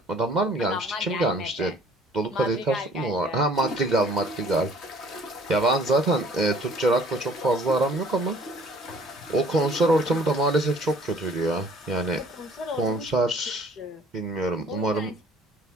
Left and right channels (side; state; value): both; normal; correlation 0.55